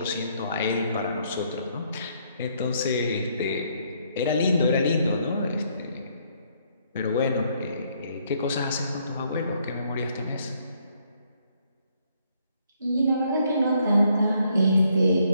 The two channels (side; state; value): both; inverted; correlation -0.70